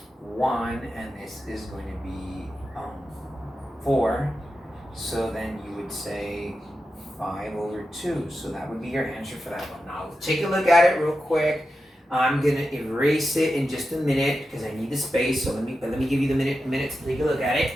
1, and this is going to be 4. So then you would say 5 over 2. So that would be your answer for that one. Now take a look at it real quick. I'm going to erase it in just a minute because I need the space. So let me give you the minute to take a look at it.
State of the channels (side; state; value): both; normal; correlation 0.90